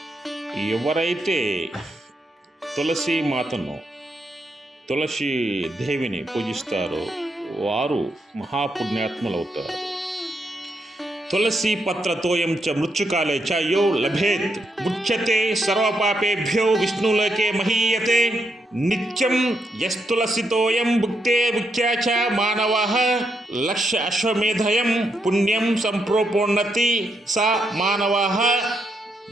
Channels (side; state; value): both; normal; correlation 0.80